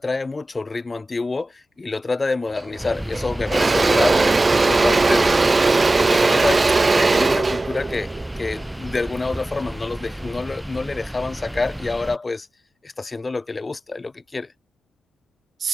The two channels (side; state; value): both; normal; correlation 0.95